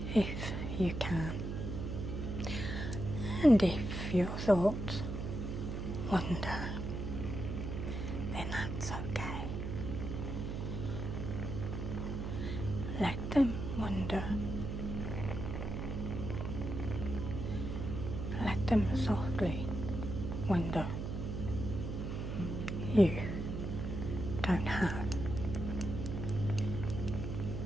if you can. And if your thoughts wander, then that's okay. Let them wander. Let them softly wander. You don't have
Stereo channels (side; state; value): right; noise; hum, 4 dB below the sound